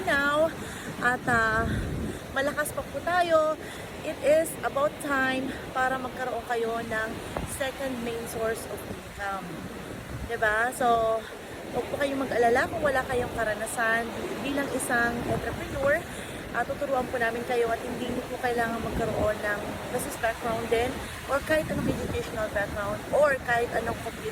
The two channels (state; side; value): identical; both; correlation 1.00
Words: now at malakas pa po tayo, it is about time para magkaroon kayo ng second main source of income. Diba? So huwag po kayong mag-alala kung wala kayong karanasan bilang isang entrepreneur. Tuturuan po namin kayo at hindi niyo po kailangan magkaroon ng business background din or kahit anong educational background or kahit anong